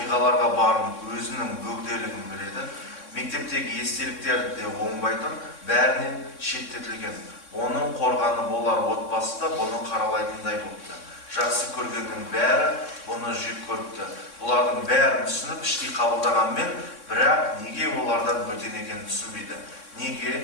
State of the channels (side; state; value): right; late; 3.6 ms